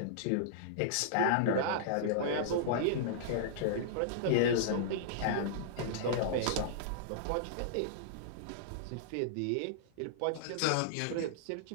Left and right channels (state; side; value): different; both; correlation -0.02